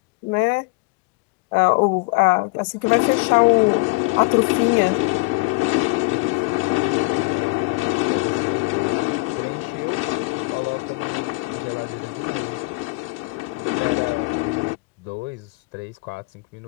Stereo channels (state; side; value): quieter; right; 26.3 dB